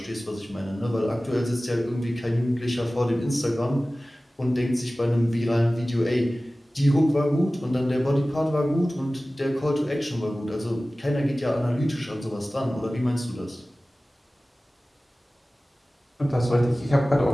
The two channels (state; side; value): normal; both; correlation 0.97